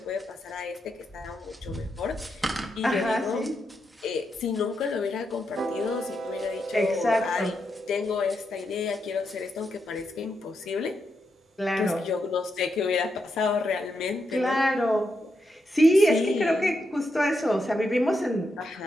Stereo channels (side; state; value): both; normal; correlation 0.84